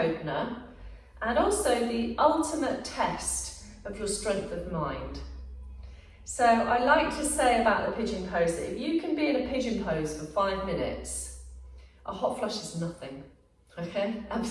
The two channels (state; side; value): identical; both; correlation 1.00